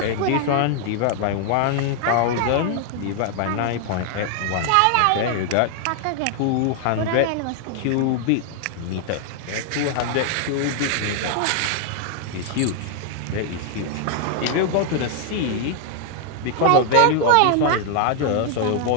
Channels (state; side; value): different; both; correlation 0.00